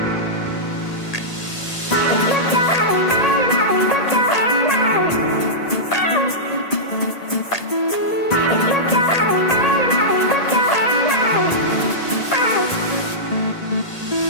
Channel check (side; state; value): right; late; 1.8 ms